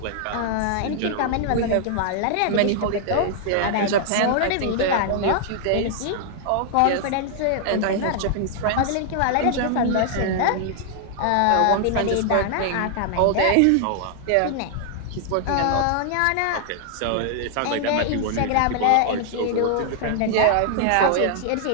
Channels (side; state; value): both; different; correlation 0.00